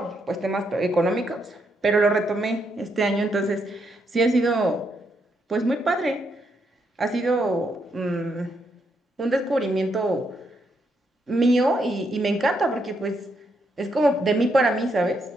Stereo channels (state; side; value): normal; both; correlation 0.78